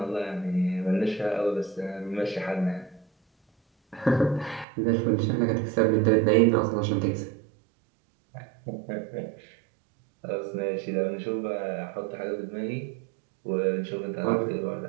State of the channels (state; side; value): drops out; left; at 4.7 s